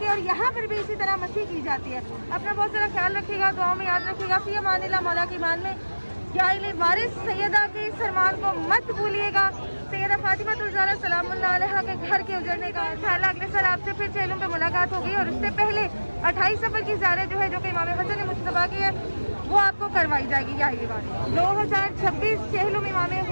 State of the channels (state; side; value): inverted; both; correlation -1.00